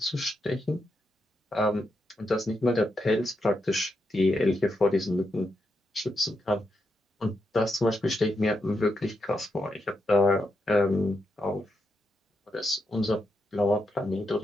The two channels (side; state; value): both; normal; correlation 0.83